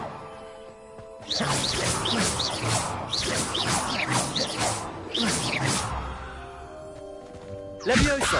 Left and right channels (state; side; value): identical; both; correlation 1.00